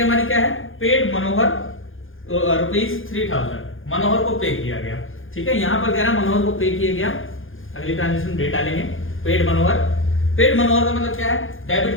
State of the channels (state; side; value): late; right; 0.59 ms